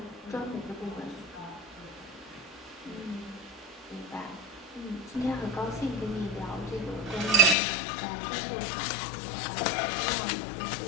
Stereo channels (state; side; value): drops out; right; at 7.6 s